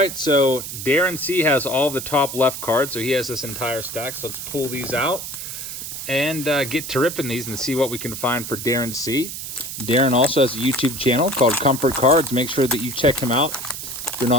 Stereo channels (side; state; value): right; noise; hiss, 8 dB below the sound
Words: so Darren C. has all the top left cards, so he has this entire stack. So let's pull these out and get to ripping these and see what we can find for Darren C. Darren also has a YouTube channel called Comfort Cards. Make sure that you check him out if you're